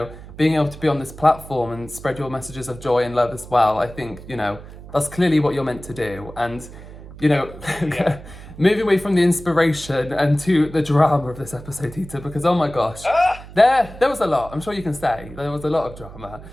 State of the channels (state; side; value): noise; right; hum, 16 dB below the sound